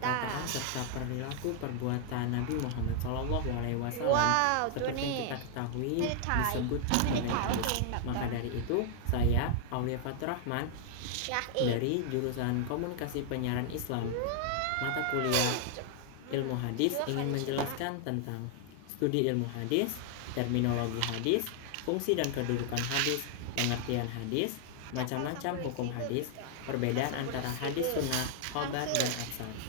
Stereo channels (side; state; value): both; different; correlation 0.00